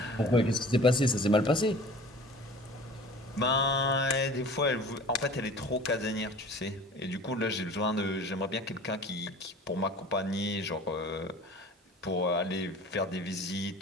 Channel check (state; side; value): normal; both; correlation 0.43